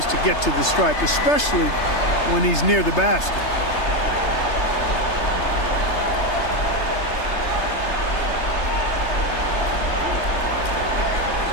to get to the stripe, especially when he's near the basket.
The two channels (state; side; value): late; right; 3.3 ms